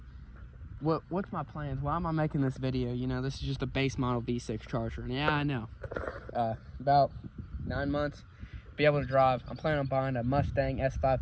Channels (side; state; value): both; identical; correlation 1.00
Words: what's my plans? Why am I making this video? You know, this is just a base model V6 Charger, and yeah, I know. About 9 months, be able to drive. I'm planning on buying a Mustang